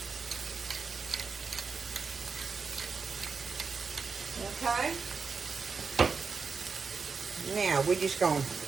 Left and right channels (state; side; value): quieter; left; 5.1 dB